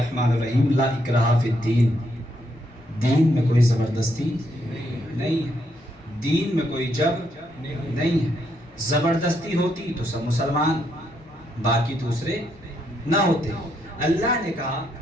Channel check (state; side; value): noise; left; hum, 30 dB below the sound